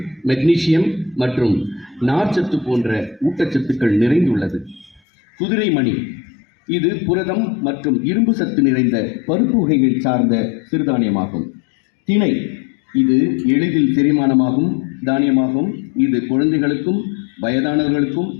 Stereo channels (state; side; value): drops out; right; at 5.0 s